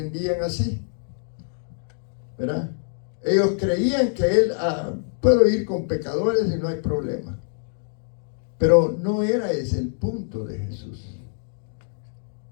así, ¿verdad? Ellos creían que Él, puedo ir con pecadores y no hay problema. Pero no era ese el punto de Jesús,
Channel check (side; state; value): right; silent; digital silence